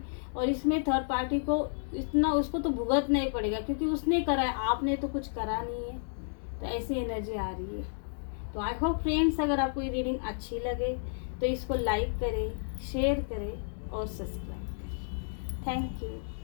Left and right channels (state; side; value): silent; right; digital silence